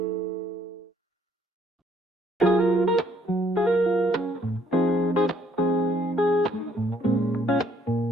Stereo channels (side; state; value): both; normal; correlation 0.66